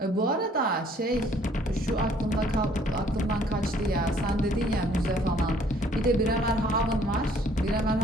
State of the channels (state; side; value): normal; both; correlation 0.60